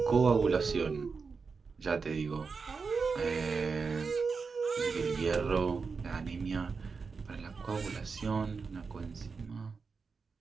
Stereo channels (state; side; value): quieter; left; 4.9 dB